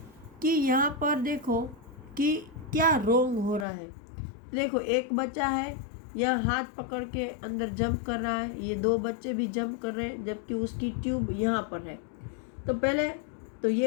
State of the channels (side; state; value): right; drops out; at 3.7 s